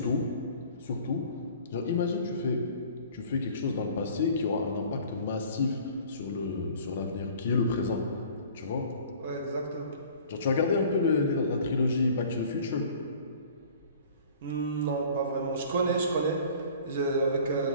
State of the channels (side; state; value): both; inverted; correlation -0.49